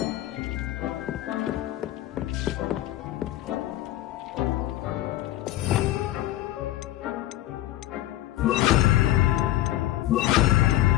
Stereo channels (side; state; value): right; quieter; 14.5 dB